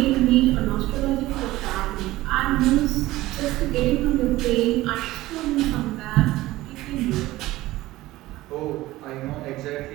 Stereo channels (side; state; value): left; quieter; 17.3 dB